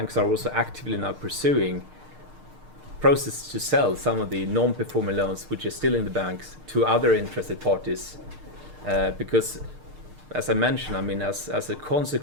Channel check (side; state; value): left; late; 6.6 ms